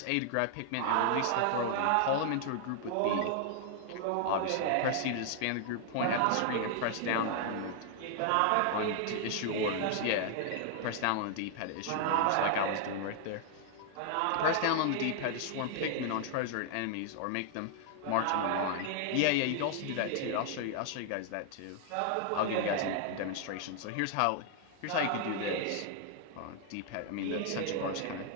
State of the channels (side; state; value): both; different; correlation 0.00